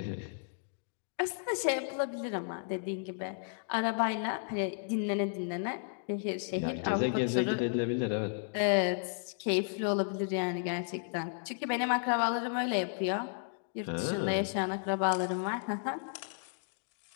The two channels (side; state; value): right; silent; digital silence